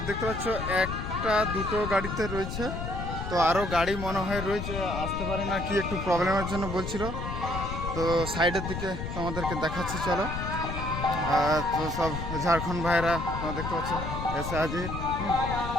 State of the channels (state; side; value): noise; left; rumble, 5 dB below the sound